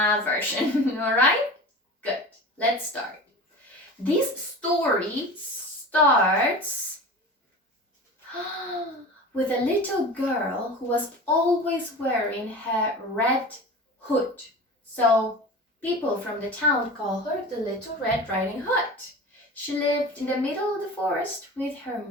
version, alright? Good, let's start. This story starts with a little girl who was always wearing her red hood. So people from the town call her the Little Red Riding Hood. She lived in the middle of the forest with her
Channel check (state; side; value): normal; both; correlation 0.34